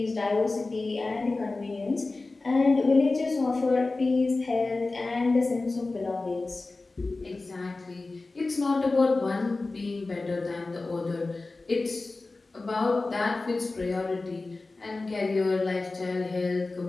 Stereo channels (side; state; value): right; quieter; 3.4 dB